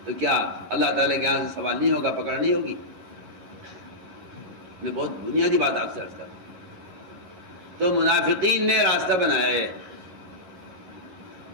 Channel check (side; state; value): left; late; 11 ms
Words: تو کیا اللہ تعالیٰ کے یہاں سے سوال نہیں ہوگا، پکڑ نہیں ہوگی؟ میں بہت بنیادی بات آپ سے عرض کرتا ہوں. تو منافقین نے راستہ بنایا ہے